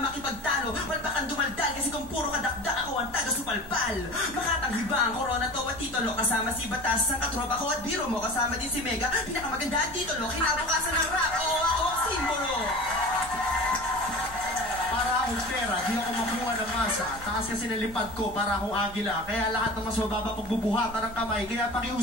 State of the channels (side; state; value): both; normal; correlation 0.36